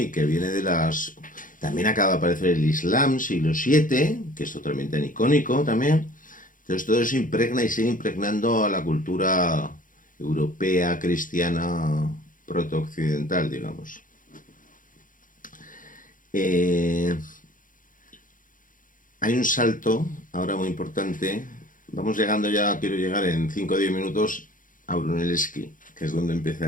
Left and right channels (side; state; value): right; late; 0.39 ms